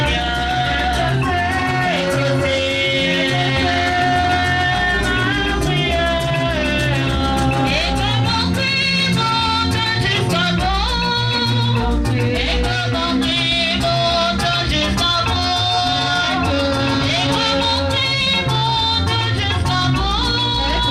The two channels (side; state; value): both; identical; correlation 1.00